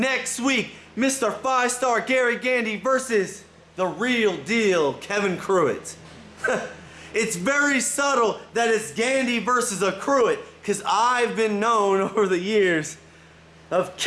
week, Mr. 5-Star Gary Gandy versus the real deal Kevin Cruitt. It's very subtle that it's Gandy versus a Cruitt, because I've been known over the years of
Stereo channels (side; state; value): both; identical; correlation 1.00